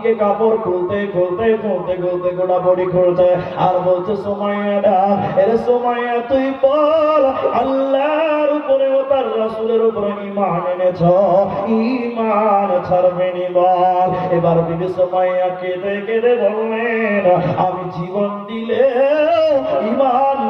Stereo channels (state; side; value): identical; both; correlation 1.00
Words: কাপড় খুলতে খুলতে খুলতে খুলতে গোটা বডি খুলছে, আর বলছে, সুমাইয়া ডাক, এরে সুমাইয়া তুই বল, আল্লাহর উপরে ও তার রাসূলের উপরে ঈমান এনেছ, ঈমান ছাড়বে নি বল। এবার বিবি সুমাইয়া কেঁদে কেঁদে বললেন, আমি জীবন দিলে ঈমান